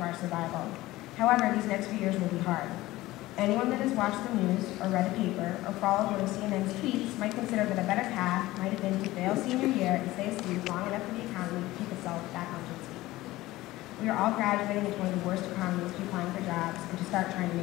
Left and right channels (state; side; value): quieter; right; 17.7 dB